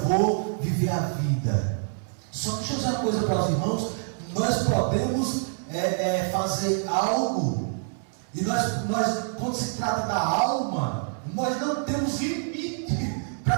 vou viver a vida. Só deixa eu dizer uma coisa para os irmãos: nós podemos fazer algo, e nós, quando se trata da alma, nós não temos limite para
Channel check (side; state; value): left; silent; digital silence